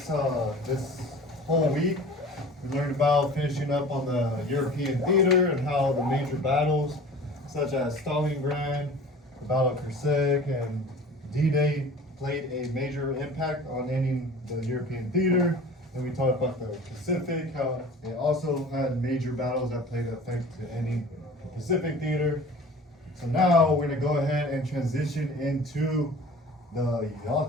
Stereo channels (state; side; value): normal; both; correlation 0.42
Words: whole week. We learned about finishing up on the European theater and how the major battles, such as Stalingrad, the Battle of Kursk, and D-Day played a major impact on ending the European theater. And we talked about the Pacific, how it also had major battles that played effect to ending the Pacific theater. So now we're gonna go ahead and transition into the